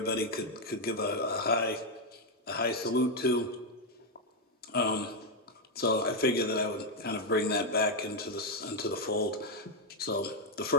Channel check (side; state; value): both; normal; correlation 0.02